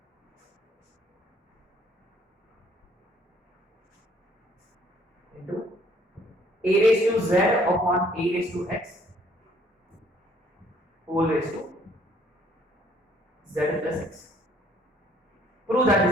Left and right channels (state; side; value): normal; both; correlation 0.62